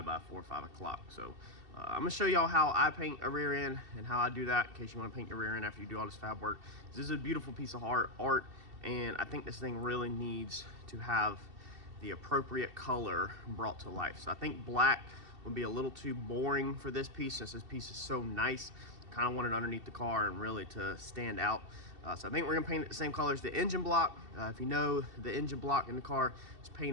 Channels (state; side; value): late; left; 2.7 ms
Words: 4 or 5 o'clock. So I'm gonna show y'all how I paint a rear end and how I do that, in case you want to paint your rear end after you do all this fab work. This is a beautiful piece of art, and I think this thing really needs to have the appropriate color brought to life. So I think black would be a little too boring for this piece, since this piece is so nice. Kind of want it underneath the car and really to stand out. So I think we're gonna paint it the same color as the engine block. If you know, the engine block in the car is